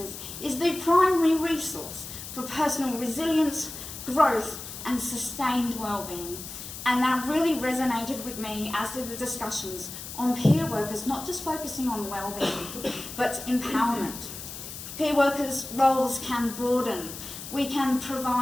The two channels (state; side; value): noise; left; hiss, 10 dB below the sound